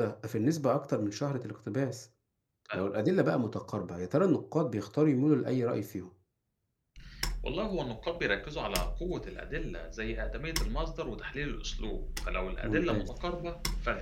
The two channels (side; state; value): both; identical; correlation 1.00